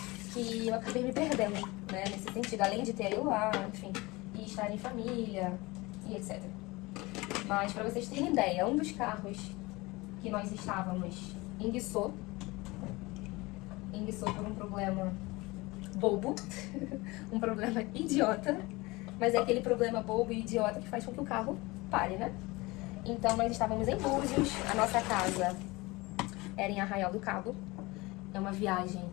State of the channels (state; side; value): quieter; right; 22.6 dB